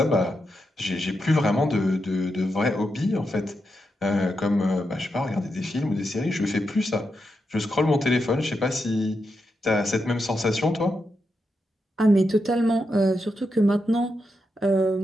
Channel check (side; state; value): both; normal; correlation 0.85